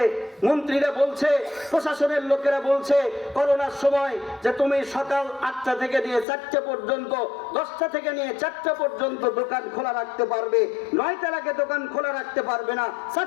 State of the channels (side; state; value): right; drops out; at 6.2 s